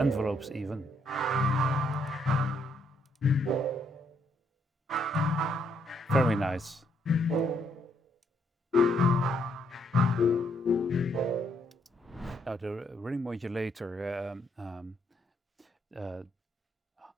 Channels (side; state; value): both; normal; correlation 0.73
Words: even. Very nice. Now the ring modulator